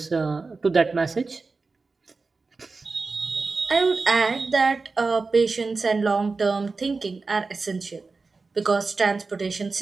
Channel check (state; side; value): quieter; left; 4.0 dB